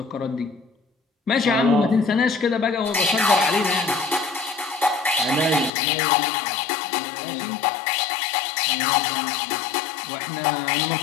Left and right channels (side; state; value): right; drops out; at 5.7 s